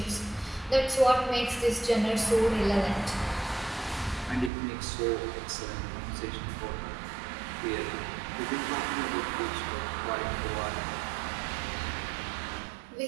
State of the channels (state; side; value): drops out; left; at 4.5 s